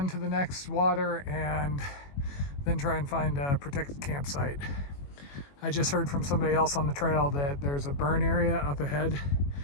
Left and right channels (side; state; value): right; late; 21 ms